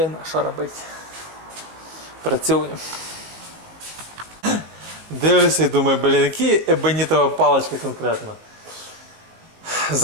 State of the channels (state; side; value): late; left; 18 ms